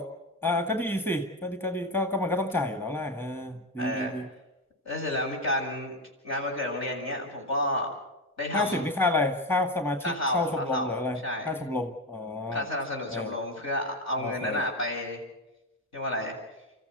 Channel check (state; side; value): normal; both; correlation 0.14